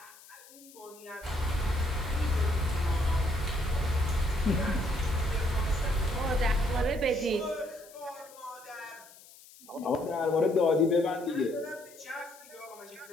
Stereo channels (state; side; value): noise; left; hiss, 22 dB below the sound